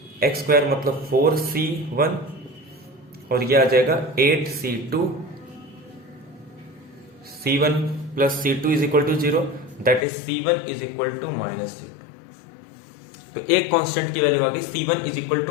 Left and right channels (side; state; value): right; drops out; at 10.1 s